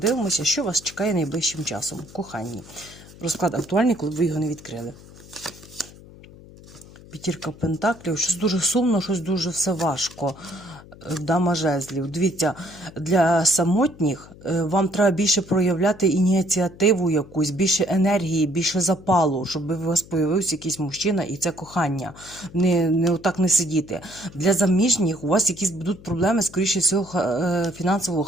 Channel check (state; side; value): noise; left; hum, 20 dB below the sound